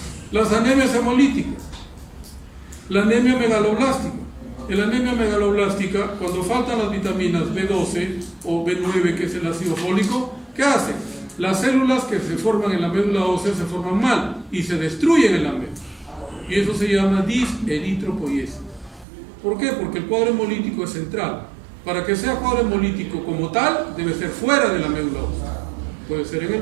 Las anemias hemolíticas. La anemia megaloblástica. En la anemia megaloblástica, cuando faltan las vitaminas B12 o B9, que es el ácido fólico, ¿qué hace? Las células que se forman en la médula ósea se forman mal y se destruyen en la médula. Y eso se llama diseritropoiesis. ¿Por qué? Porque el cuadro hemolítico es central. Para que sea cuadro hemolítico como tal, debe ser fuera de la médula ósea. Puede ser en el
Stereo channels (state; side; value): drops out; left; at 19.1 s